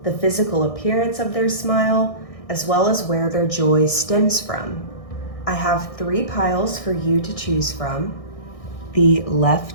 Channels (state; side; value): late; right; 1.6 ms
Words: the physical appearance of their smile, as well as where their joy stems from. I have 3 piles for you to choose from. The